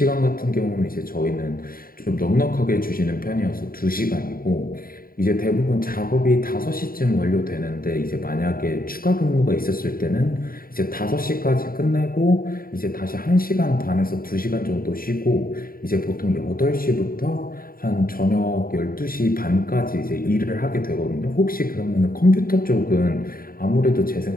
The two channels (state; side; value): late; right; 0.42 ms